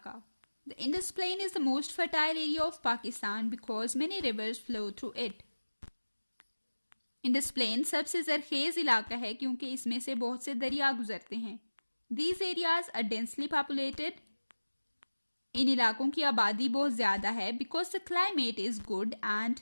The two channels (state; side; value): inverted; both; correlation -1.00